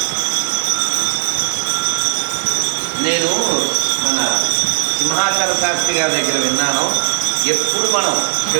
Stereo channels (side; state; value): left; silent; digital silence